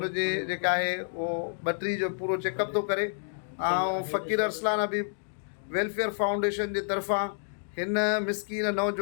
जेका आहे उहो ॿटरी जो पूरो चेकअप थो करे। ऐं फ़कीर अरसलान अबी वेलफेयर फाउंडेशन जे तरफ़ां हिन मिसकीन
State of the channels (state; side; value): silent; right; digital silence